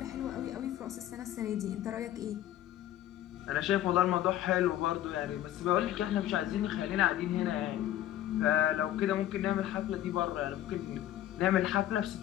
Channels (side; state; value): right; quieter; 12.8 dB